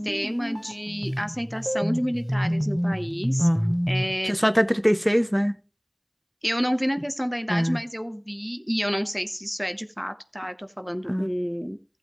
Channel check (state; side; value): identical; both; correlation 1.00